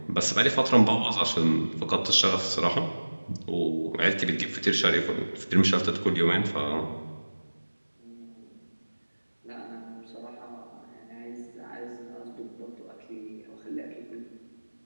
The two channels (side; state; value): both; inverted; correlation -1.00